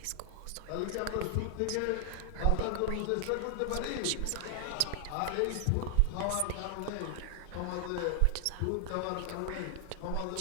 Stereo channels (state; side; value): different; both; correlation 0.00